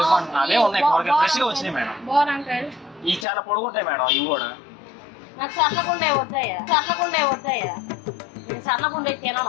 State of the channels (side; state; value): right; drops out; at 3.2 s